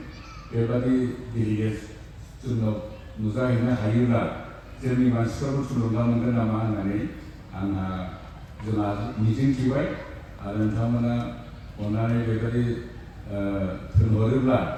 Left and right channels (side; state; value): both; identical; correlation 1.00